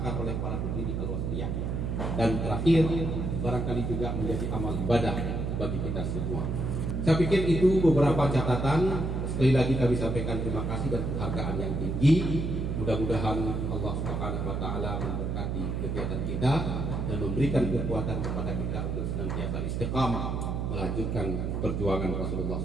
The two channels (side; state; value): right; noise; hum, 1 dB below the sound